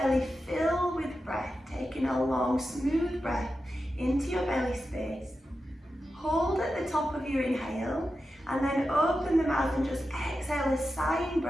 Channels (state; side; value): normal; both; correlation 0.91